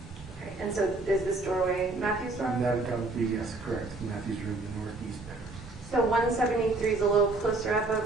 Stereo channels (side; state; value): left; quieter; 3.1 dB